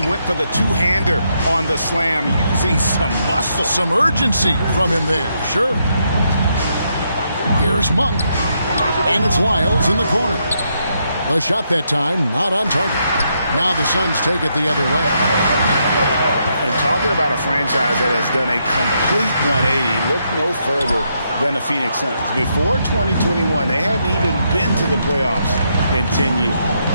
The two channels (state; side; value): inverted; both; correlation -0.78